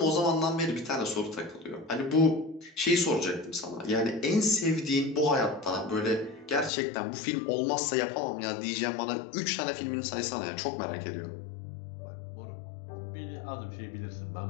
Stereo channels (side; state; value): right; drops out; at 6.7 s